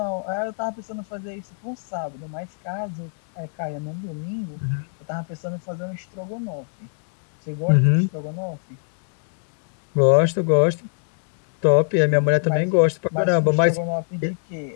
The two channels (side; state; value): right; silent; 63 dB below the other